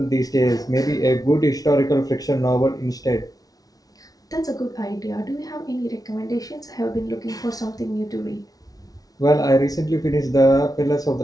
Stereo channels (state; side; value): late; right; 0.18 ms